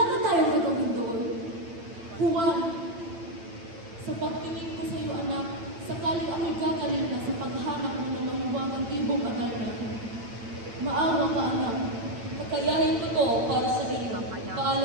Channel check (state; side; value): late; left; 9.0 ms